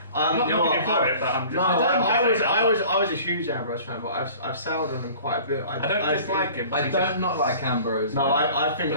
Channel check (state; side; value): inverted; both; correlation -0.46